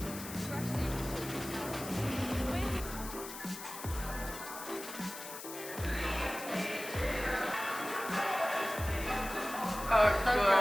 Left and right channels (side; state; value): left; noise; hiss, 11 dB below the sound